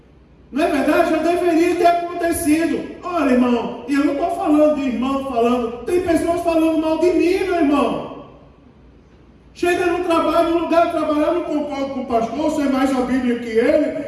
Não é verdade? Já deveria ter acontecido. Olha, irmão, e eu não estou falando de irmão falando, tem pessoas falando mal de mim, meu irmão. Chega no trabalho, no lugar de trabalhar, eu não concordo com o pastor, eu sei mais a Bíblia que ele,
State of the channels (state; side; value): identical; both; correlation 1.00